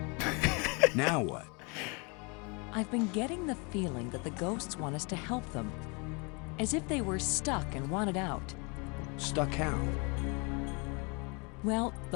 Now what? I've been getting the feeling that the ghosts want us to help them. As if they were stuck and wanted out. Stuck how? Well,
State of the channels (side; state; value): right; quieter; 31.5 dB